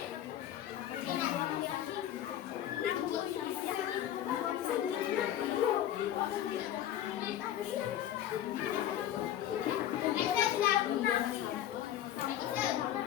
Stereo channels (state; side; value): quieter; right; 11.7 dB